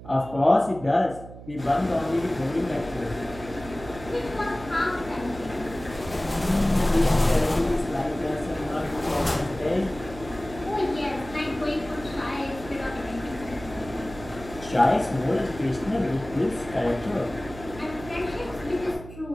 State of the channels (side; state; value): right; noise; hum, 15 dB below the sound